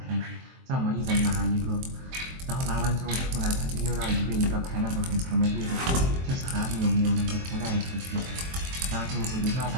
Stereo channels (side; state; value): left; late; 23 ms